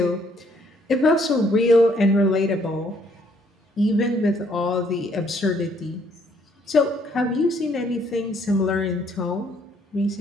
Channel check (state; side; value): normal; both; correlation 0.66